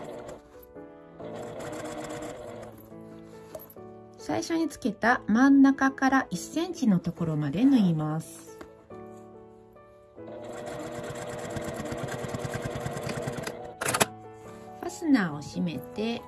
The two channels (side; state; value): both; identical; correlation 1.00